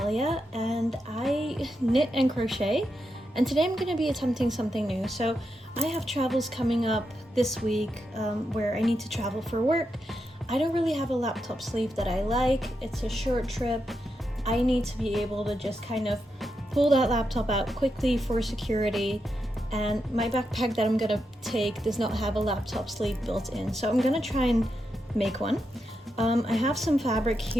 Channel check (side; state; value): both; normal; correlation 0.85